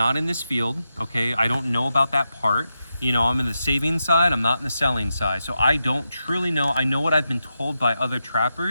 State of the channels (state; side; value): inverted; both; correlation -0.88